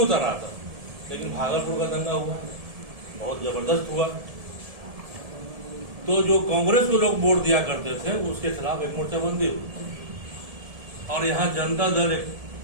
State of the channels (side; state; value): left; late; 1.7 ms